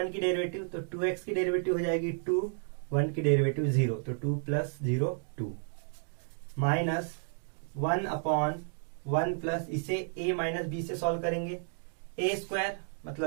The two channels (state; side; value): silent; left; digital silence